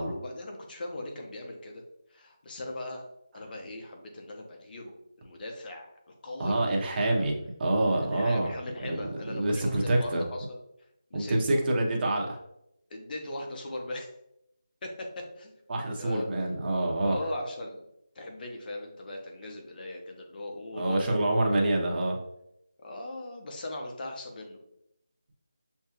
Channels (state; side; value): inverted; both; correlation -0.91